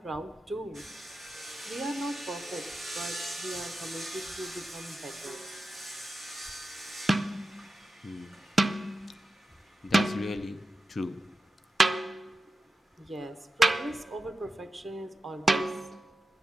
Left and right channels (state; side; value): normal; both; correlation 0.92